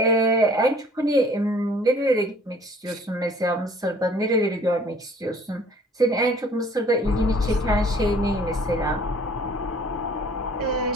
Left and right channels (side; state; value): both; normal; correlation 0.54